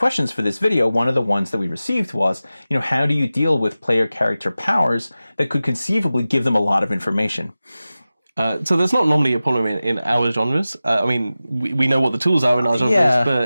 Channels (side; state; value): both; inverted; correlation -0.95